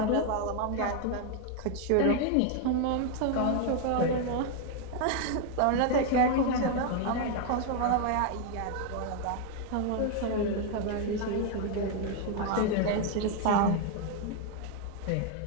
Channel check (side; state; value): both; different; correlation 0.00